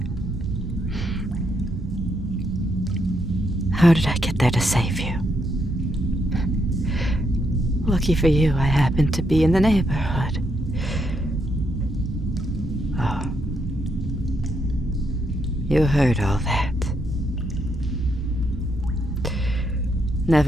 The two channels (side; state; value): both; normal; correlation 0.78